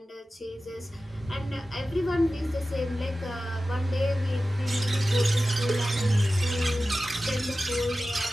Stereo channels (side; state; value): both; normal; correlation 0.95